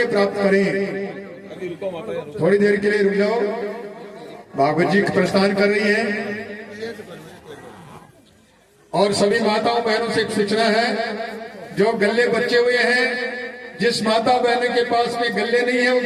प्राप्त करें। थोड़ी देर के लिए रुक जाओ, भागवत जी प्रस्थान कर रही है। और सभी माताओं बहनों से एक सूचना है, जो गल्ले बचे हुए हैं, जिस माता बहन के पास में गल्ले नहीं है वो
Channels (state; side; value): identical; both; correlation 1.00